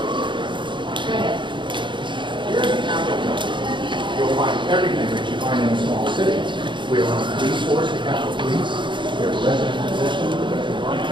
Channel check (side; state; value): left; late; 0.23 ms